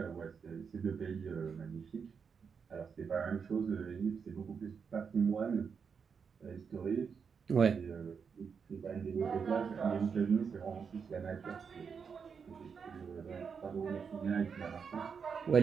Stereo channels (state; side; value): quieter; left; 6.2 dB